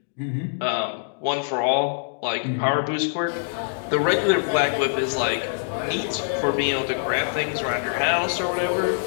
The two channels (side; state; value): right; silent; digital silence